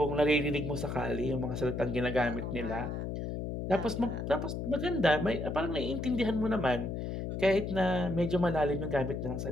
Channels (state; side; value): noise; left; hum, 4 dB below the sound